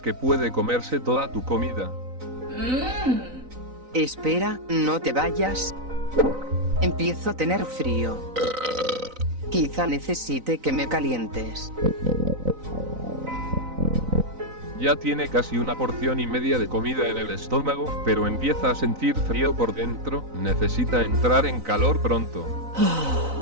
puede comerse toda tu comida. Espera, no te vayas. Empiezo a tener frío. Quizá necesite que me calientes. Ya tiene casi una porción y media de comida en el estómago, pero empieza a sentir frío por dentro. Necesita entrar en calor pronto.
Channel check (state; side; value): late; left; 3.9 ms